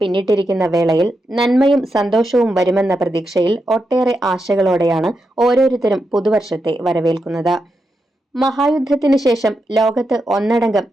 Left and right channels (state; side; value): normal; both; correlation 0.86